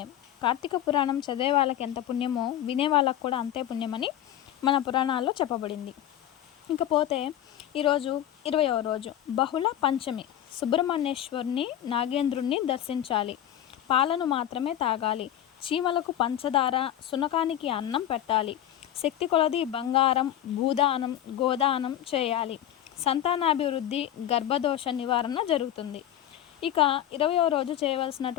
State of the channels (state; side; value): quieter; right; 11.6 dB